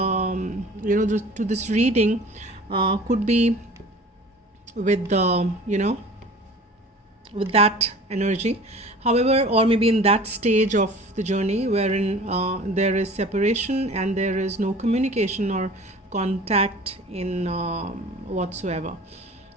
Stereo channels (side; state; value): both; normal; correlation 0.44